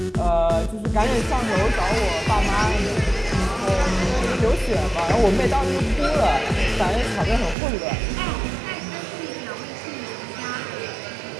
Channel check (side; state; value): left; drops out; at 7.6 s